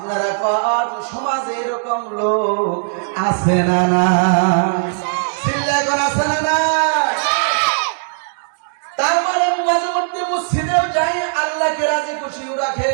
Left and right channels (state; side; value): silent; left; digital silence